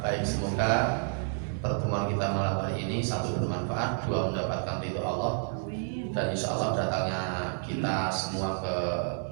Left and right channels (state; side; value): silent; left; 55 dB below the other